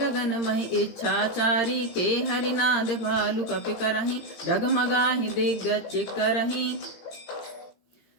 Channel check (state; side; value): late; right; 18 ms